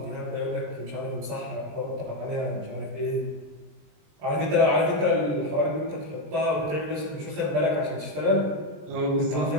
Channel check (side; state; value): left; late; 20 ms